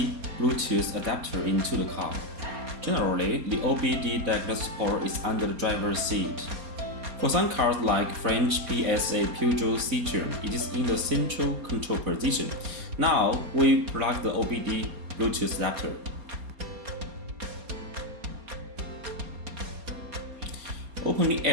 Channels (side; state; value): left; late; 4.3 ms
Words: Bluetooth adapter into the car. Generally, the OBD diagnose port is under the driver's seat. For some cars like French PSA Peugeot Citroën, it is in the central control position. Now, we plug the OBD Bluetooth adapter. Open the